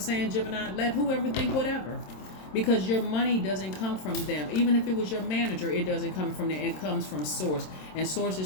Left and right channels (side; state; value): right; late; 27 ms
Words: Gemini? Let whoever think whatever. Because your money doesn't come from them. Even if it was your manager, it doesn't come from them. It comes from Source. And Source